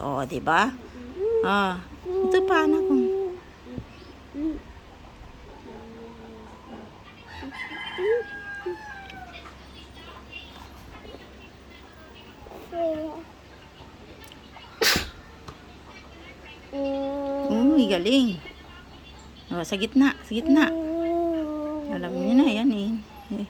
diba? Ito pa, anak ko. Uy, galing. Sa gitna. Alam niya na, yan eh.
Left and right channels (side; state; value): both; identical; correlation 1.00